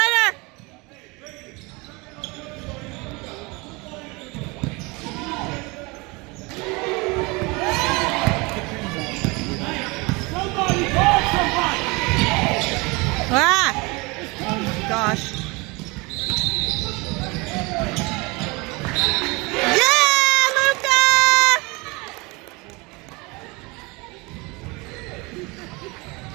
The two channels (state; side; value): quieter; left; 26.2 dB